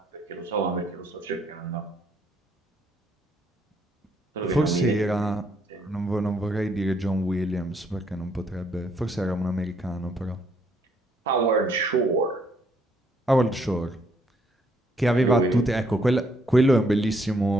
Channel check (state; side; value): normal; both; correlation 0.70